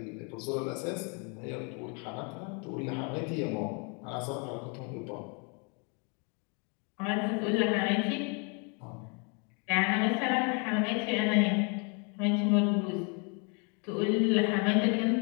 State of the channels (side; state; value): right; quieter; 35.2 dB